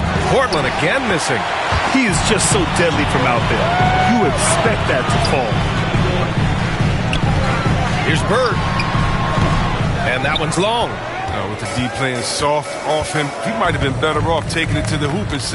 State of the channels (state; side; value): identical; both; correlation 1.00